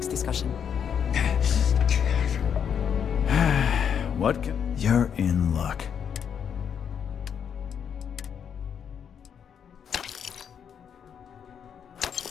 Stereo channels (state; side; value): quieter; right; 7.8 dB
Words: discussion. What can... You're in luck.